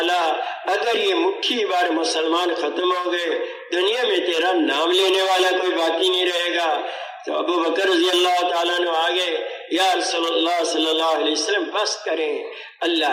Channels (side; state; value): both; identical; correlation 1.00